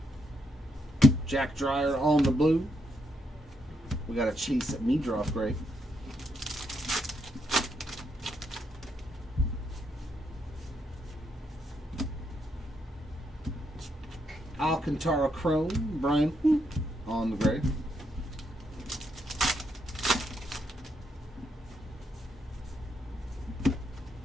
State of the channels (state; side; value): normal; both; correlation 0.79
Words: Jack Dreyer on the blue. We got a Chase Meadroff gray. Alcantara chrome, Brian on the gray.